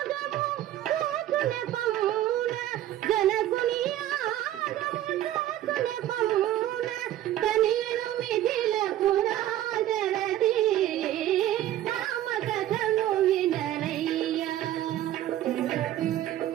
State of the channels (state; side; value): quieter; left; 13.1 dB